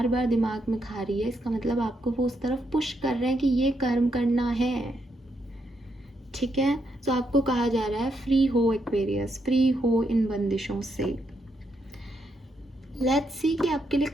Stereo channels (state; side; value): normal; both; correlation 0.79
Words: बार दिमाग में खा रही है, इसका मतलब आपको वो उस तरफ पुश कर रहे हैं कि ये कर्म करना है, ठीक है। तो आपको कहा जा रहा है फ्री हो एक्वेरियस, फ्री हो इन बंदिशों से। लेट्स सी कि आपके लिए